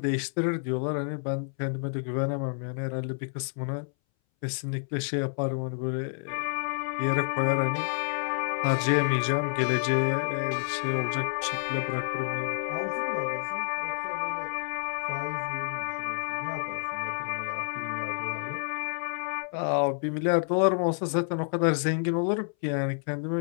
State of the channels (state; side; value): silent; right; 58 dB below the other